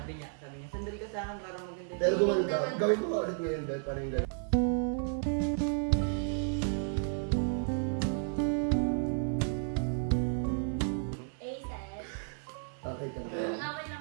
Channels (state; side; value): silent; left; 56 dB below the other